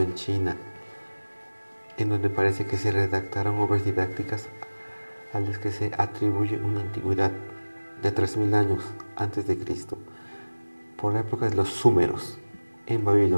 China, en donde parece que se redactaron obras didácticas a las que se atribuye una antigüedad de 3000 años antes de Cristo, por la época de los Súmeros, en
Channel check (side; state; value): both; inverted; correlation -1.00